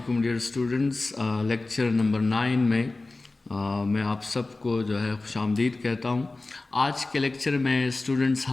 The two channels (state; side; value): quieter; right; 3.2 dB